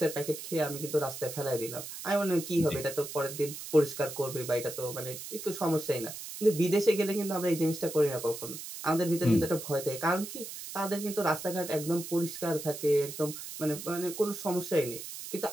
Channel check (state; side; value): noise; right; hiss, 10 dB below the sound